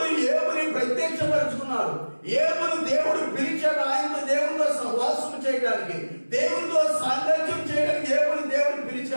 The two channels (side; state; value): both; inverted; correlation -1.00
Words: యోబుని ప్రత్యక్షపరుచుకున్నాడు. యోబును దేవుడు పిలిచాడు. ఆయనతో దేవునితో సహవాసం చేయడానికి, దేవునితో సాంగత్యం చేయడానికి యోబుని దేవుడు